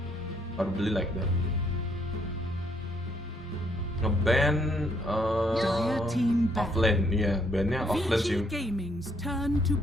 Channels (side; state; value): both; normal; correlation 0.70